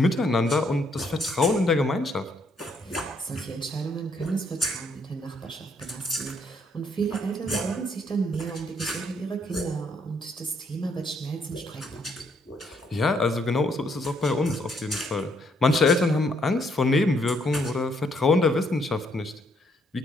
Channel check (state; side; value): normal; both; correlation 0.71